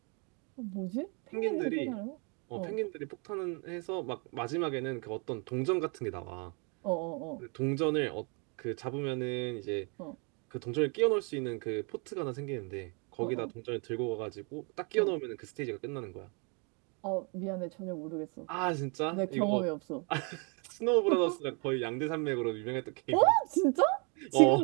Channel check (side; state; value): left; quieter; 34.9 dB